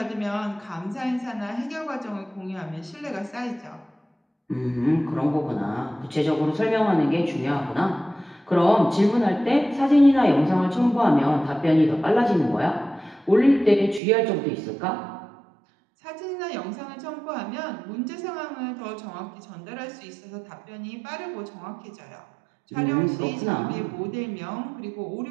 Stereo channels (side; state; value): left; drops out; at 14.0 s